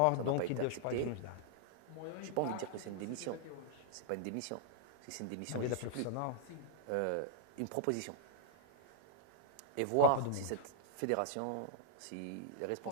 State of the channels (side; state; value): both; different; correlation -0.01